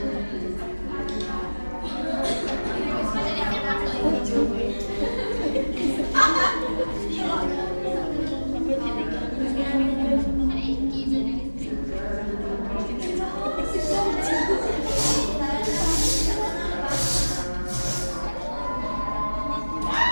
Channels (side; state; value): both; inverted; correlation -1.00